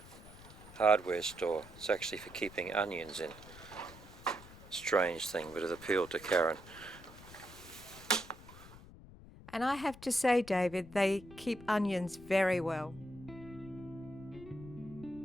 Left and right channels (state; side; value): noise; left; rumble, 18 dB below the sound